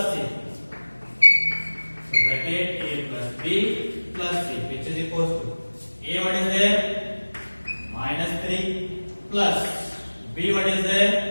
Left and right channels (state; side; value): inverted; both; correlation -1.00